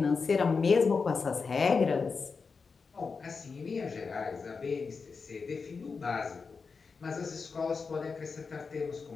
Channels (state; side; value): quieter; right; 4.9 dB